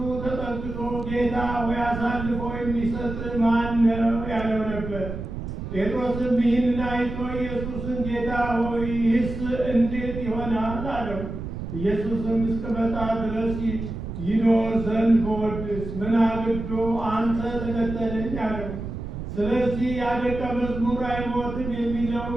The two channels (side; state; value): right; noise; rumble, 7 dB below the sound